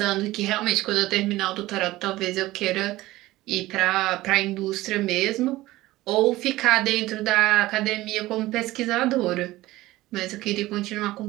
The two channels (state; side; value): quieter; left; 17.5 dB